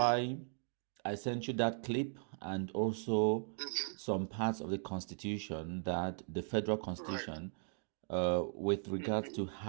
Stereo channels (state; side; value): silent; left; digital silence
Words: I sent you that clip and also Mm-hmm. some parts of the Constitution that the federal Right. Constitution, with regards Mm-hmm. to